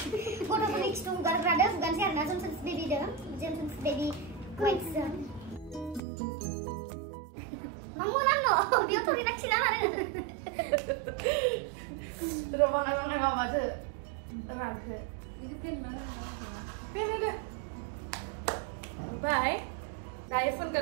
गारग्रादो हुगानसै आरोना जेमस बेबि वाइट्सजों Mamurano, dia tuh tidak silakan. Sudah bangai nggak macet, terang ke. Ini pen mana? Pen ada. Bye. Kayak pun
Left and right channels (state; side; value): drops out; left; at 6.0 s